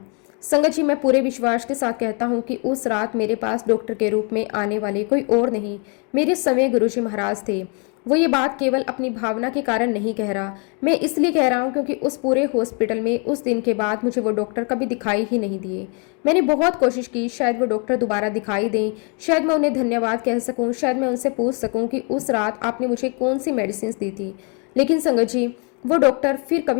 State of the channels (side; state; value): right; quieter; 36.3 dB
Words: संगत जी, मैं पूरे विश्वास के साथ कहता हूँ कि उस रात मेरे पास डॉक्टर के रूप में आने वाले कोई और नहीं, मेरे समय गुरुजी महाराज थे। वो ये बात केवल अपनी भावना के कारण नहीं कह रहा, मैं इसलिए कह रहा हूँ क्योंकि उस पूरे हॉस्पिटल में उस दिन के बाद मुझे वो डॉक्टर कभी दिखाई ही नहीं दिए। मैंने बहुत कोशिश की, शायद वो डॉक्टर दोबारा दिखाई दें, शायद मैं उन्हें धन्यवाद कह सकूँ, शायद मैं उनसे पूछ सकूँ कि उस रात आपने मुझे कौन सी मेडिसिन दी थी। लेकिन संगत जी, वो डॉक्टर फिर